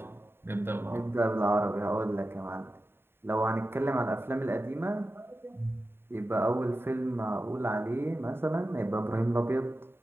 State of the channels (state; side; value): late; left; 0.11 ms